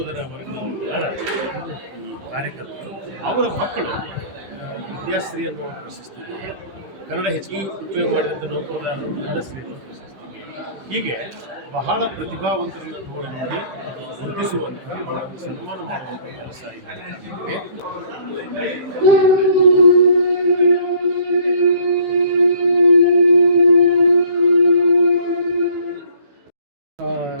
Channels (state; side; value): late; left; 15 ms